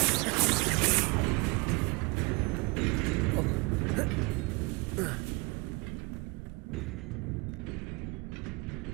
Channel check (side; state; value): left; quieter; 27.8 dB